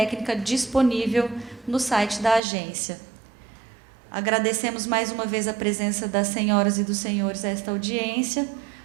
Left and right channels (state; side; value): drops out; left; at 2.4 s